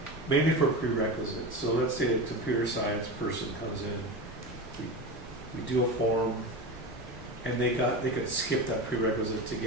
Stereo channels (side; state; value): both; normal; correlation 0.24